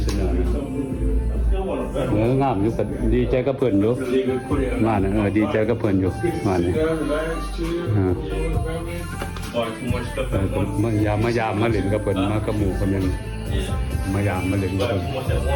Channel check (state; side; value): identical; both; correlation 1.00